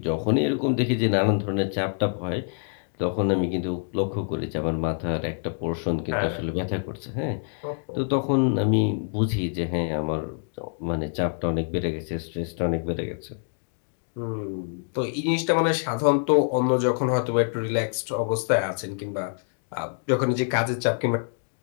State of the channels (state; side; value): silent; right; 61 dB below the other